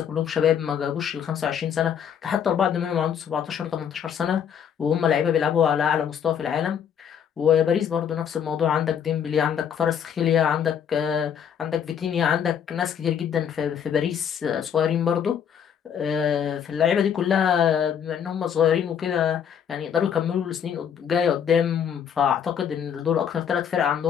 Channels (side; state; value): right; quieter; 8.2 dB